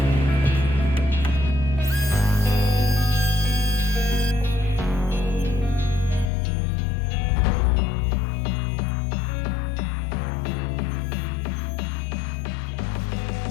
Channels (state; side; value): drops out; right; at 6.3 s